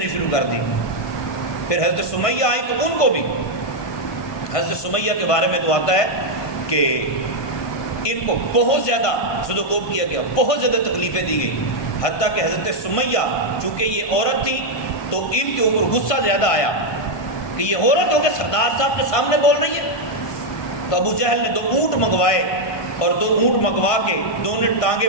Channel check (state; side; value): late; right; 1.5 ms